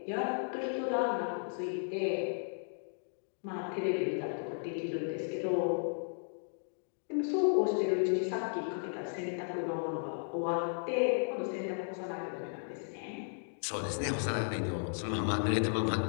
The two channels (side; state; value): right; silent; digital silence